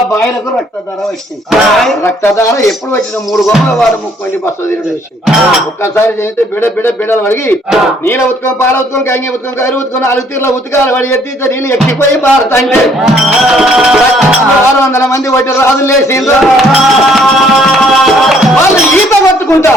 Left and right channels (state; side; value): normal; both; correlation 0.63